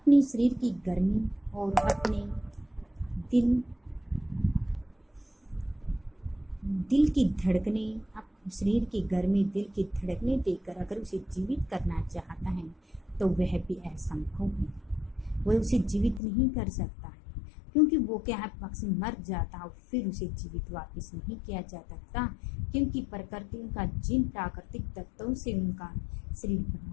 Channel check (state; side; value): drops out; right; at 16.2 s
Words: शरीर की गर्मी और अपने दिल की धड़कने शरीर की गर्मी दिल की धड़कने देकर अगर उसे जीवित करना चाहता है तो वह भी असंभव है। वह उसे जीवित नहीं कर सकता है क्योंकि वो क्या है, पक्षी मर जाता और फिर उसे जीवित वापस नहीं किया जा सकता क्योंकि प्रकृति उनका जिन प्राकृतिक तत्वों से उनका शरीर